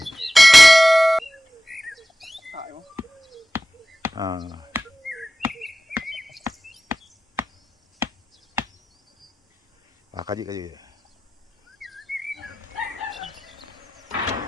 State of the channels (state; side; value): normal; both; correlation 0.95